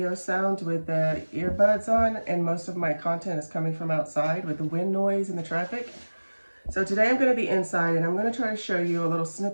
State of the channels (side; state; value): both; inverted; correlation -1.00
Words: sound with the earbuds on, and most of my content is coming from outside with the wind noise and the traffic. So today I'm going to be inside, and I'm going to try to show you a little